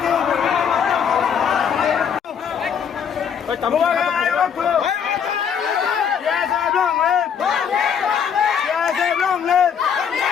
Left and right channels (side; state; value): right; quieter; 7.5 dB